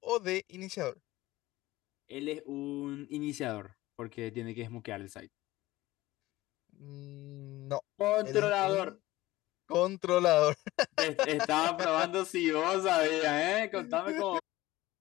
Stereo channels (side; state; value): right; quieter; 17.8 dB